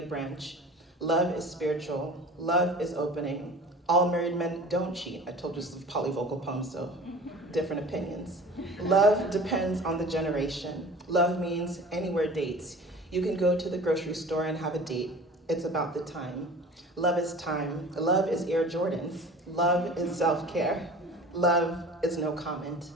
branch. Love is spiritual. Love is opening. All married men don't cheat. I told you it's a polyvocal poem, so different opinions. Love depends on the generation. Love means anywhere dates. You can go to the grocery store and have a date. It's about the time. Love is time. Love is Air Jordans. Love is self-care. Love is no comment.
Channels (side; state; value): both; normal; correlation 0.41